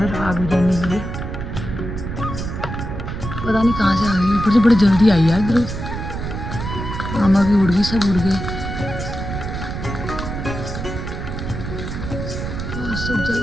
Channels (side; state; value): right; noise; rumble, 6 dB below the sound